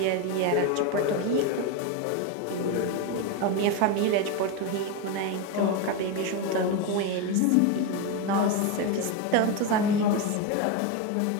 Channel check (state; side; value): different; both; correlation 0.03